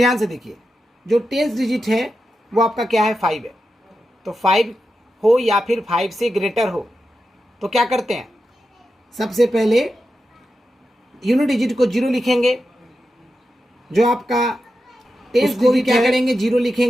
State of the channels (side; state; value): both; normal; correlation 0.89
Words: से देखिए, जो टेंस डिजिट है वो आपका क्या है, 5 है। तो 5 हो या फिर 5 से ग्रेटर हो तो क्या करते हैं, सबसे पहले यूनिट डिजिट को 0 लिखेंगे, जो आपका टेंस डिजिट क्या करेंगे 0